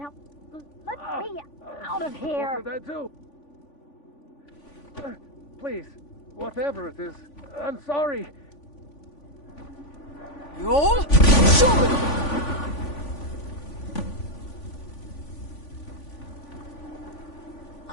let me out of here! What did I do? Please, whatever it is, I'm sorry. You're...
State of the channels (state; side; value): late; right; 3.5 ms